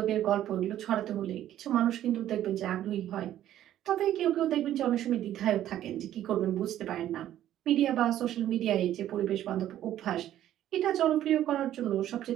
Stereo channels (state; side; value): quieter; left; 12.2 dB